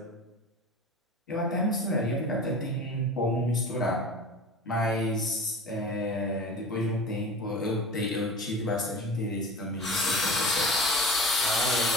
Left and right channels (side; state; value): both; normal; correlation 0.35